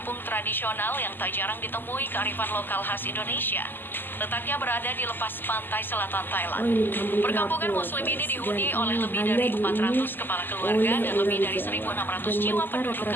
tradisional yang tak jarang ditemui kearifan lokal khas Indonesia. Letaknya berada di lepas pantai selatan Thailand. Oh, ini kampung Perkampungan terapung, Muslim ini guys. dihuni Dan oleh lebih hanya dari dihuni 400 kepala keluarga oleh dan lebih orang dari Jawa. 1.600 Dan jiwa mereka penduduk rata-rata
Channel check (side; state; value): right; late; 0.092 ms